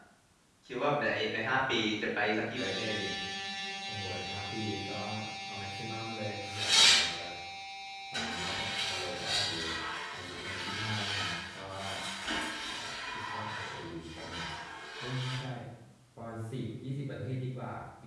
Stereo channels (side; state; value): both; identical; correlation 1.00